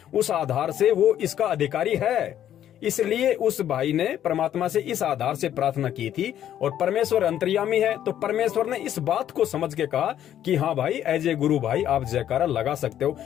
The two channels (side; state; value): right; quieter; 10.9 dB